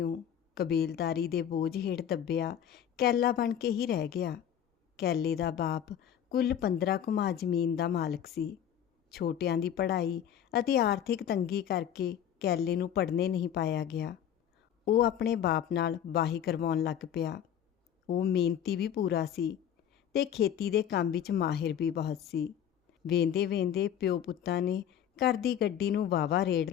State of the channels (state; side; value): quieter; right; 9.6 dB